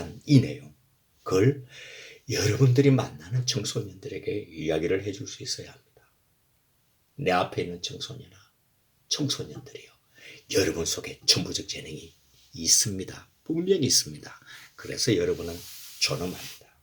이 내용, 그걸 여러분들이 만나는 청소년들에게 이야기를 해줄 수 있어야 합니다. 내 앞에 있는 청소년들이요. 여러분 속에 천부적 재능이 있습니다. 분명히 있습니다. 그래서 여러분은 존엄합니다.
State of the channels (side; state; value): both; identical; correlation 1.00